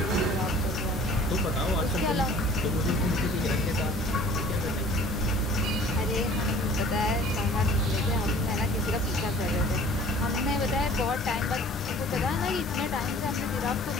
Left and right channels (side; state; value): both; normal; correlation 0.49